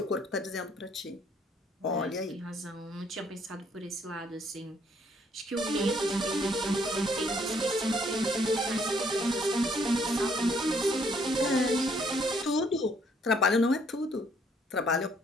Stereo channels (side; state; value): both; normal; correlation 0.66